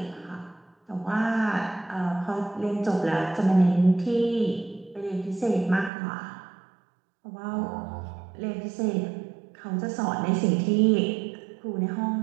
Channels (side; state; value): left; drops out; at 5.9 s